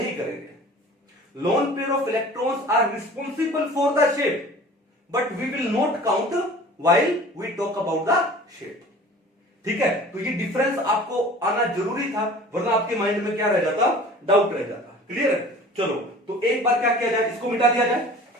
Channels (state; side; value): normal; both; correlation 0.44